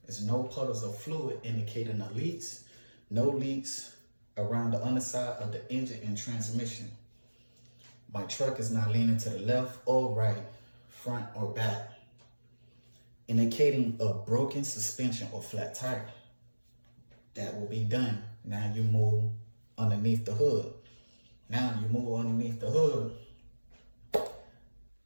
is no puddles of fluid indicating the leaks, no leaks around the underside of the engine and transmission. My truck is not leaning to the left or right, front or back, indicating a broken suspension or flat tire. That will be done. Now you move underneath the hood. Now you move underneath the hood.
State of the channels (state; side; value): inverted; both; correlation -1.00